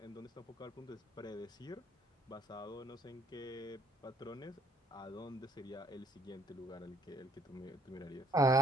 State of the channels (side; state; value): both; normal; correlation 0.65